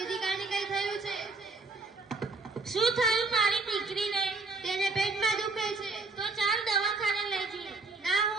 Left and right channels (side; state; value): left; quieter; 3.6 dB